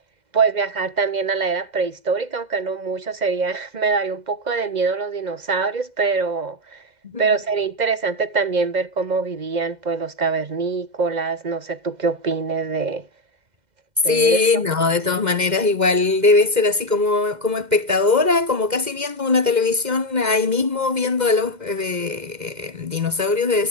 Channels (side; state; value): left; late; 2.0 ms